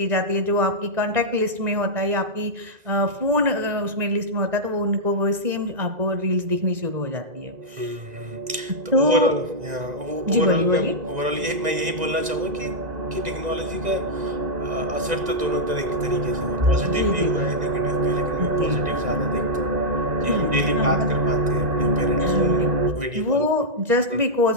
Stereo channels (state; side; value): late; left; 2.0 ms